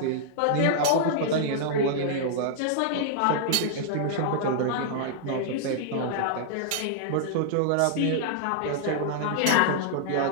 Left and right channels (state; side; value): different; both; correlation -0.01